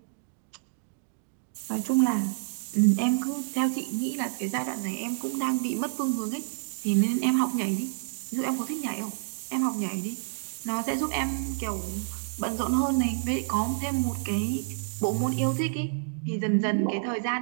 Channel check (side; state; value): left; silent; digital silence